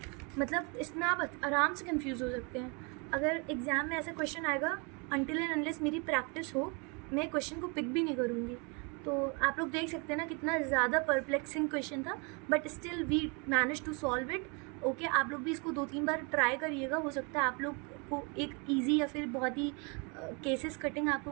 मतलब इसमें आप आराम से कंफ्यूज हो सकते हैं। अगर एग्ज़ाम में ऐसा क्वेश्चन आएगा, अनटिल एंड अनलेस मेरी प्रैक्टिस हो, मैं क्वेश्चन को पिक भी नहीं करूँगी। तो आप लोग देख सकते हैं ना कितना ज़्यादा परप्लेक्सिंग क्वेश्चन था, but still we manage to solve it. Okay, आप लोग भी इसको 2-3 बार ट्राई करिएगा, हो सकता है आप लोग को एक ईजी या फिर बहुत ही केसेस कटिंग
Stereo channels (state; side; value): quieter; left; 32.5 dB